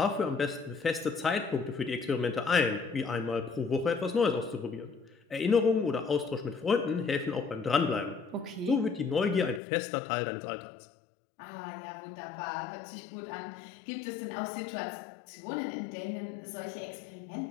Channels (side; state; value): right; drops out; at 9.6 s